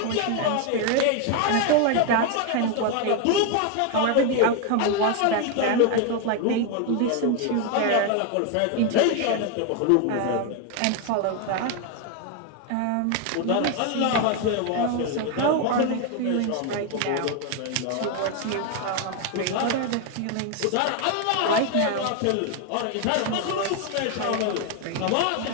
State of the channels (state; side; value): different; both; correlation 0.01